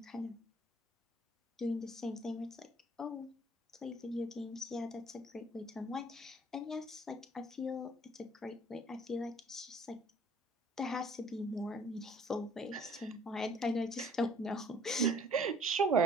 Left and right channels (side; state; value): both; normal; correlation 0.56